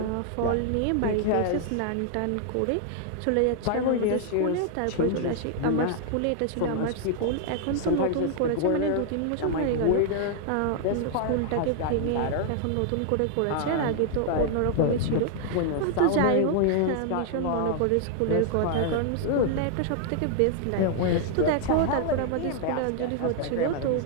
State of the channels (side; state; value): both; different; correlation 0.00